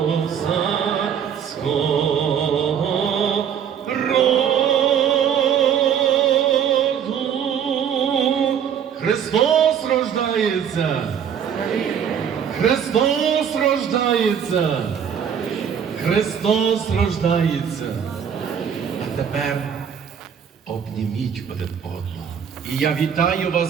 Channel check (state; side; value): quieter; left; 8.1 dB